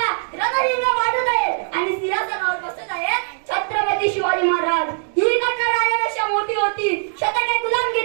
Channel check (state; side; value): silent; left; digital silence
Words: रणहिंग वाढत आहे आणि सिंहासनावर बसत आहेत छत्रपती शिवाजी महाराज. ही घटना राजापेक्षा मोठी होती. शतके